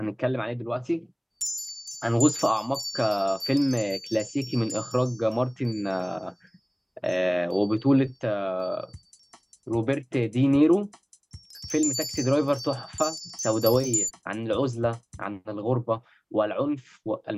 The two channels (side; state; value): both; identical; correlation 1.00